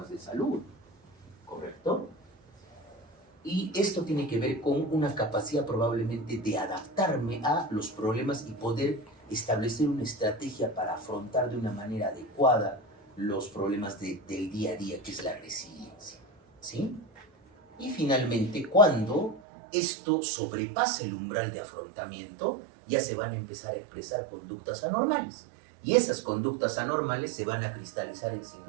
de salud, ¿correcto? Y esto tiene que ver con una capacidad probablemente de adaptarme a los problemas y poder establecer una estrategia para afrontar de una manera adecuada los problemas del día a día, que es la resiliencia, ¿sí? Y finalmente, cuando esto sobrepasa el umbral de afrontamiento, ya se van a empezar a expresar conductas anormales. Y esas conductas anormales se van a cristalizar en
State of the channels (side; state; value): left; drops out; at 19.4 s